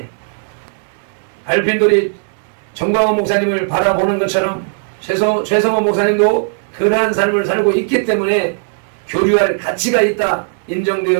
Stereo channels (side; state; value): left; silent; 61 dB below the other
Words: 발핀돌이 정광훈 목사님을 바라보는 것처럼 최성호 목사님도 그러한 삶을 살고 있기 때문에 교류할 가치가 있다